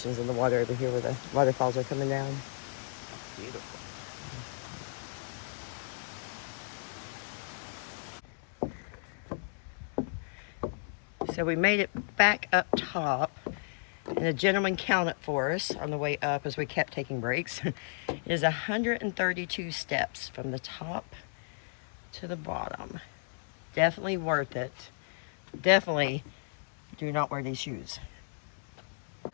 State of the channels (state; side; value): silent; right; digital silence